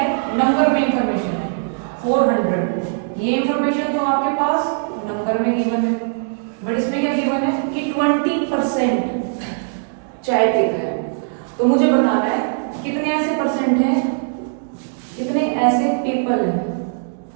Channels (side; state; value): left; silent; digital silence